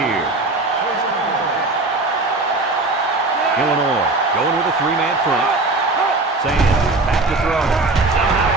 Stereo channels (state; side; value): quieter; left; 3.2 dB